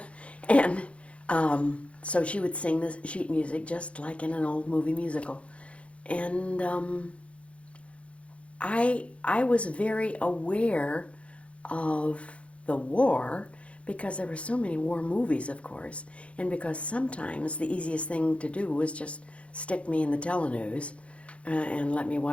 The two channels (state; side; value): late; right; 0.062 ms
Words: And so she would sing the sheet music just like in an old movie musical. And I was very aware of the war because there were so many war movies, of course, and because sometimes the easiest thing to do was just stick me in the telenews and let me